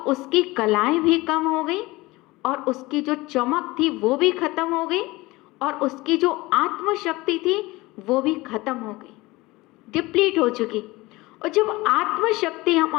उसकी कलाएं भी कम हो गई और उसकी जो चमक थी वो भी खत्म हो गई और उसकी जो आत्मशक्ति थी वो भी खत्म हो गई, डिप्लीट हो चुकी। और जब आत्मशक्ति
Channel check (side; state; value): right; quieter; 21.0 dB